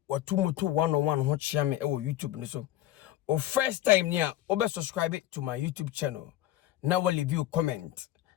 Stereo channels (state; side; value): quieter; right; 14.0 dB